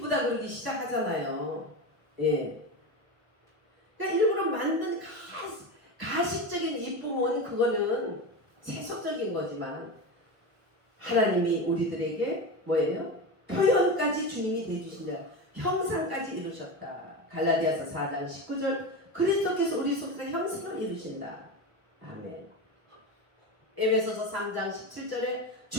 그러기 시작하잖아요. 예. 그러니까 일부러 만든 가식적인 이쁨은 그거는 세속적인 거지만 하나님이 우리들에게 뭐예요? 표현까지 주님이 대주신다. 형상까지 이루셨다. 갈라디아서 4장 19절 그리스도께서 우리 속에서 형상을 이루신다. 아멘. 에베소서 3장 17절에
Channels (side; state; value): left; late; 1.0 ms